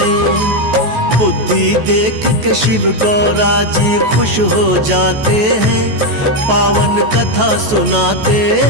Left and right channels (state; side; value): late; left; 14 ms